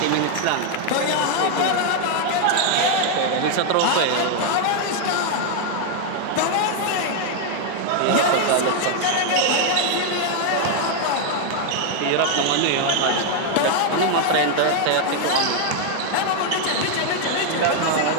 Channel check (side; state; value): both; different; correlation 0.00